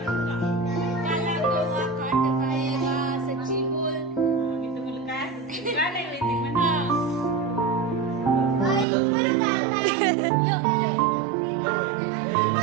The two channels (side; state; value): left; drops out; at 8.8 s